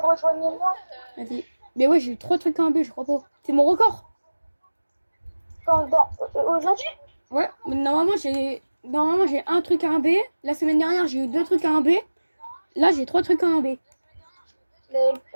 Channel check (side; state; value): both; inverted; correlation -1.00